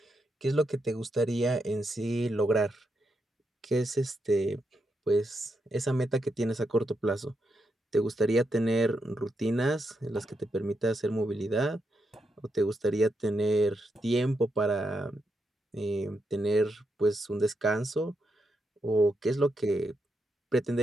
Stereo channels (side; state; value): both; normal; correlation 0.83